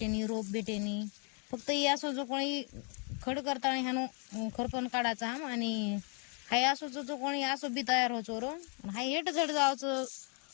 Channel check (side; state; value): right; quieter; 37.6 dB